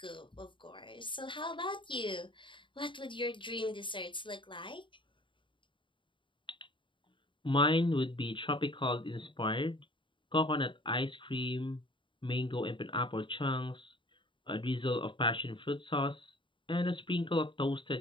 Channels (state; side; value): late; right; 0.24 ms